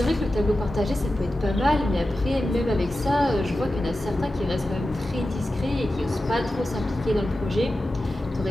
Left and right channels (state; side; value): normal; both; correlation 0.93